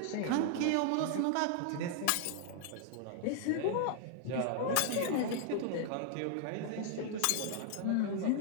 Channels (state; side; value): different; both; correlation 0.00